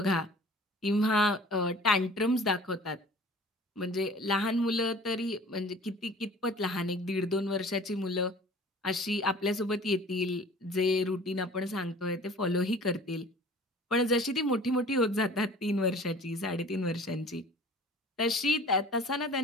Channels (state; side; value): normal; both; correlation 0.46